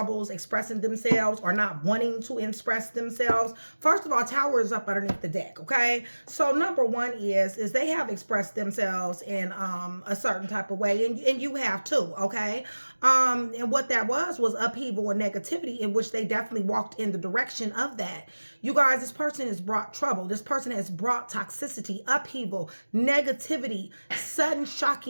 expressing themselves or not wanting to express themselves, first of all, Tower is up underneath the deck, okay? So number one is they have expressed themselves in a certain type of way, and you have too, okay? And what that was upheaval and negativity, in which they definitely walked in the direction of that. You guys, this person has brought trouble. This person has brought toxicity, upheaval, negativity, sudden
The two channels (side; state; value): both; inverted; correlation -1.00